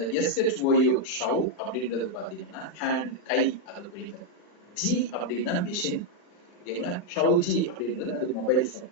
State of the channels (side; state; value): right; late; 40 ms